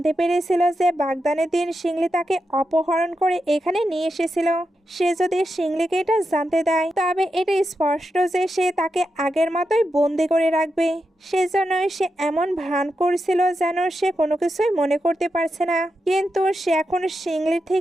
পেরেছিল যে বাগদানের দিন শিংলি তাকে অপহরণ করে এখানে নিয়ে এসেছিল। সে যদি শিংলিকে এটা জানতে দেয় তবে এটা স্পষ্ট যে সে তাকে আগের মতোই বন্দি করে রাখবে। সেজন্যই সে এমন ভান করছিল যেন সে কোনো কিছুই মনে করতে পারছে না। কিন্তু সে এখন শিংলির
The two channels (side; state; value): both; normal; correlation 0.87